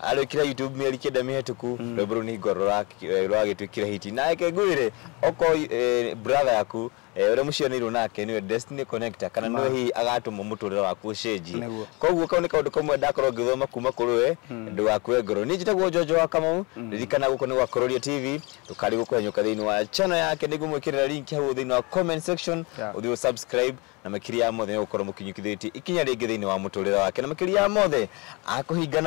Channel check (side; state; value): right; quieter; 27.8 dB